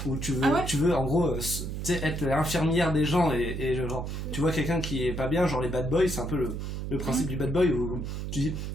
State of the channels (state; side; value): noise; right; hum, 5 dB below the sound